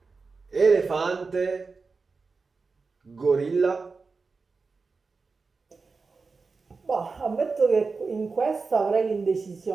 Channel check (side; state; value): left; quieter; 4.4 dB